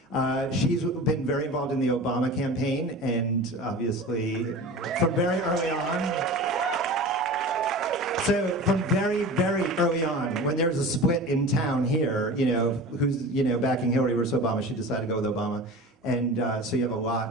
She's been very involved in the Obama campaign, and obviously from very early on. So from very, very early on, when there was a split in town here, who's backing Hillary versus Obama, she decided to go with Obama, and so you have a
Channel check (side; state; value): both; normal; correlation 0.34